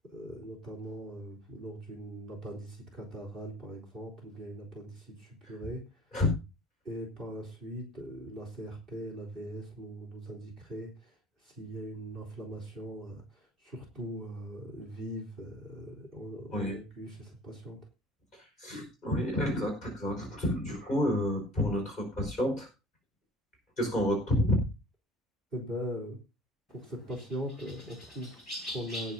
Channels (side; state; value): both; normal; correlation 0.48